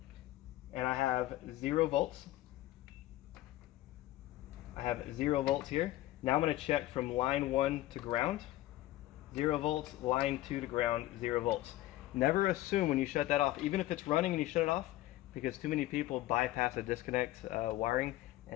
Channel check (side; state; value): right; quieter; 15.8 dB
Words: and I have 0 volts. I have 0 volts here. Now I'm going to check from line 1 to ground. 0 volts, line 2 to ground, 0 volts. Never assume when you shut that off, even if it's running and you shut it off, because too many people bypass a disconnect wiring